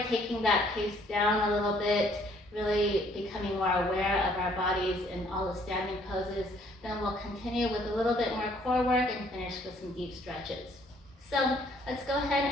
taking that pace down a little bit, really becoming more aware of our bodies in all the standing poses. Then we'll continue with a little bit more core work and finish with some deep stretches. So let's go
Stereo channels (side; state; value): both; normal; correlation 0.63